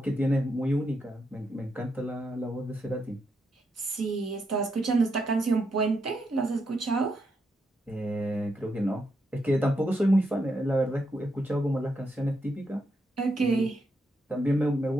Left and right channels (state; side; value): normal; both; correlation 0.81